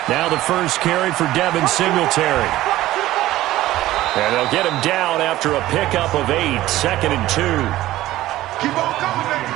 Now the first carry for Devin Singletary. And they'll get him down after a pickup of 8, 2nd and 2.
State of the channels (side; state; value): left; quieter; 15.6 dB